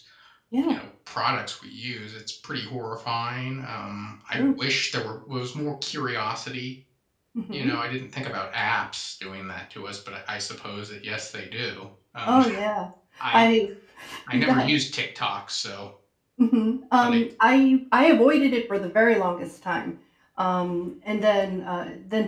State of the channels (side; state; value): both; identical; correlation 1.00